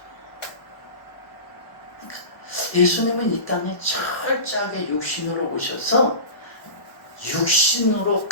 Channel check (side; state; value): right; late; 1.1 ms